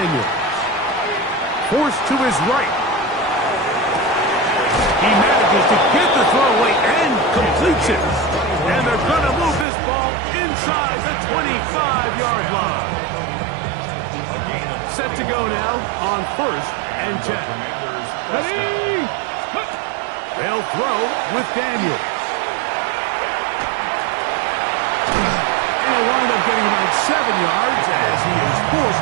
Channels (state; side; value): drops out; left; at 9.7 s